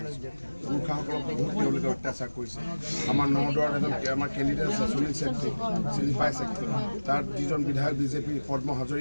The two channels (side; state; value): both; inverted; correlation -1.00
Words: পুৰুষসকলক বহুত তেওঁলোকে অত্যাচাৰ কৰিছে আমাৰ নদুৱাৰত এজন আমাৰ কেণ্ডিডেট আছে সুনীল চেত্ৰী চিনি পাইছে তাৰ যিজন বিধায়ক বিজেপি পদ্ম